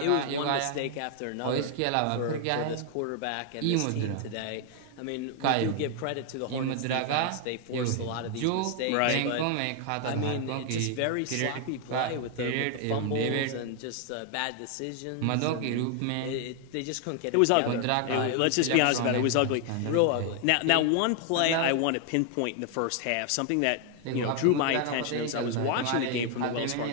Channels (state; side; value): different; both; correlation 0.00